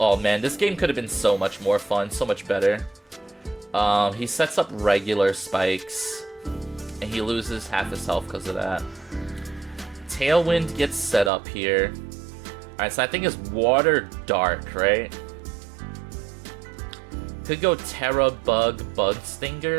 man. This game could have been so much more fun. So much better. He sets up regular spikes. And he loses half his health because of that. Tailwind gets set up here. Alright, so I think it's Water Dark, right? could go Terra Bug Bug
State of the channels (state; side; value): drops out; left; at 11.3 s